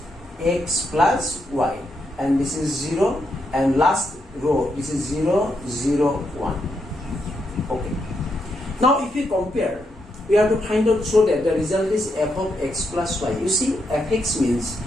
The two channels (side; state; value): both; normal; correlation 0.81